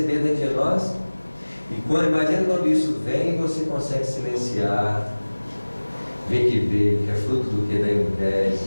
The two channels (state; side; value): inverted; both; correlation -1.00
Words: dentro de nós. E imagina quando isso vem e você consegue silenciar, ver que veio, que é fruto do que? Da